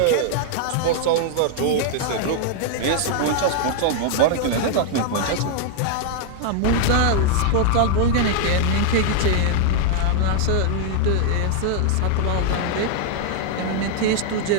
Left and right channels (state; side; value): different; both; correlation 0.00